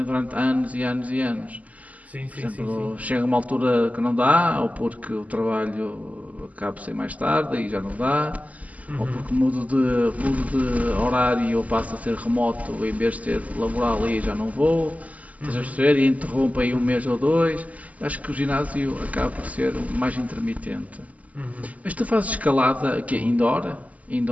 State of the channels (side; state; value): left; late; 0.073 ms